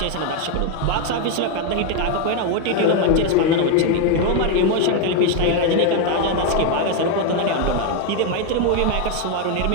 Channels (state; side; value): different; both; correlation 0.01